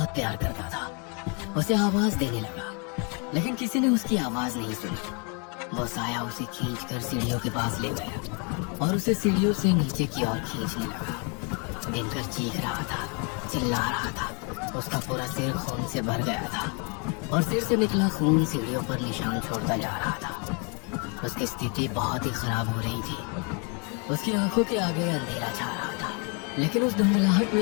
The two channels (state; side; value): quieter; right; 34.9 dB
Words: प्यार करता था, उसे आवाज देने लगा, लेकिन किसी ने उसकी आवाज नहीं सुनी। वो साया उसे खींचकर सीढ़ियों के पास ले गया और उसे सीढ़ियों से नीचे की ओर खींचने लगा। दिनकर चीख रहा था, चिल्ला रहा था। उसका पूरा सिर खून से भर गया था और सिर से निकला खून सीढ़ियों पर निशान छोड़ता जा रहा था। उसकी स्थिति बहुत ही खराब हो रही थी। उसकी आंखों के आगे अंधेरा छा रहा था, लेकिन उस धुंधलाहट